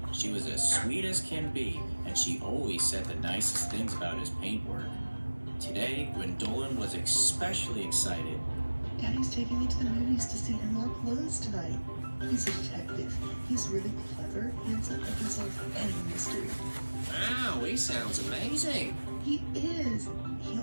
She was as sweet as can be, and she always said the nicest things about his paintwork. Today, Gwendolyn was especially excited. Daddy's taking me to the movies to see him up close tonight. He's a detective. He's really clever, handsome, and can solve any mystery. Wow, he sounds amazing. He is. He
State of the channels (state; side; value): inverted; both; correlation -1.00